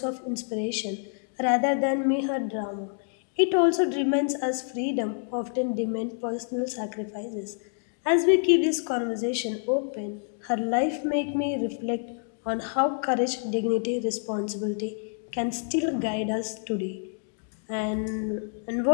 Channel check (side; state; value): right; silent; 58 dB below the other